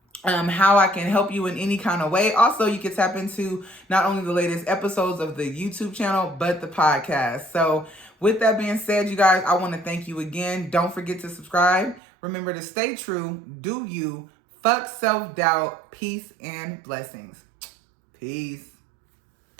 how I can help you in any kind of way. Also, you can tap into not only the latest episodes of the YouTube channel, but the podcast. So with that being said, you guys, I want to thank you again. Don't forget to subscribe. Remember to stay true, do you, fuck self-doubt, peace and blessings. Peace.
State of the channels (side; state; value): left; drops out; at 12.0 s